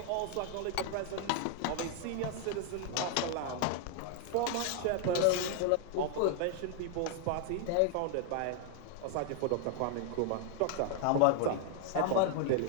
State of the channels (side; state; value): both; different; correlation 0.00